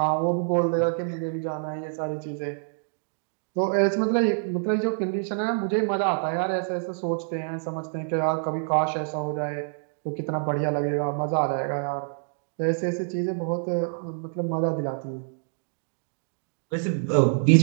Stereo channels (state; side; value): silent; left; digital silence